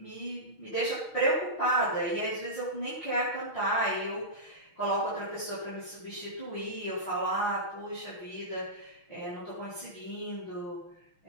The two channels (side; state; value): right; late; 6.3 ms